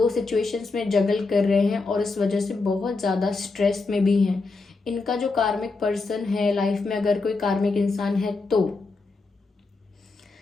सिचुएशंस में जगल कर रहे हैं और इस वजह से बहुत ज़्यादा स्ट्रेस में भी हैं। इनका जो कार्मिक पर्सन है लाइफ में, अगर कोई कार्मिक इंसान है, तो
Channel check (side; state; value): right; quieter; 3.8 dB